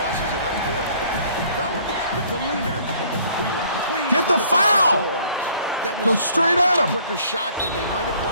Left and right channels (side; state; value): both; inverted; correlation -0.57